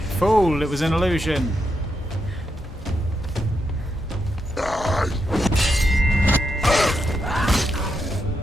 Fool, it was an illusion.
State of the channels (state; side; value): normal; both; correlation 0.82